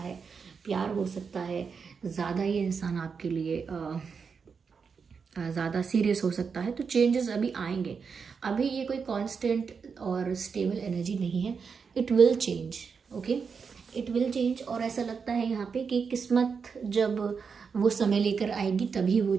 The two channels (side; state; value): left; quieter; 5.7 dB